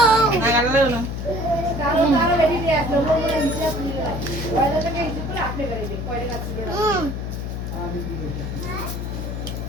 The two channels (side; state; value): left; noise; hum, 4 dB below the sound